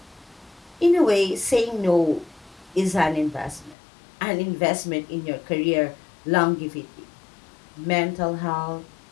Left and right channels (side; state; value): right; drops out; at 3.8 s